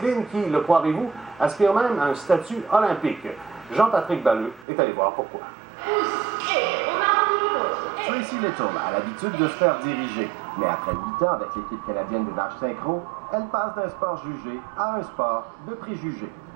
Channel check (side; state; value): left; drops out; at 4.7 s